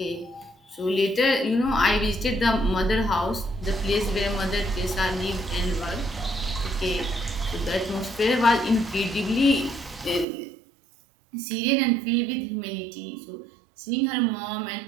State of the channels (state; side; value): drops out; left; at 10.2 s